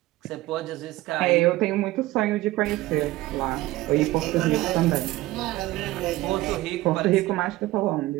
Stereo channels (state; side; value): quieter; left; 17.6 dB